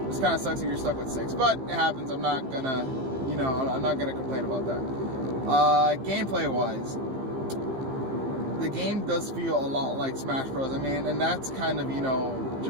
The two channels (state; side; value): late; left; 15 ms